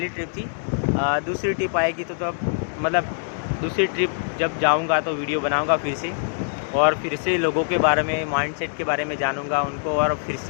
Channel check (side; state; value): right; silent; digital silence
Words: ट्रिप थी। दूसरी ट्रिप आएगी तो अब मतलब दूसरी ट्रिप जब जाऊंगा तो वीडियो बनाऊंगा फिर से, और फिर से लोगों के बारे में, माइंडसेट के बारे में जानूंगा उनको, और फिर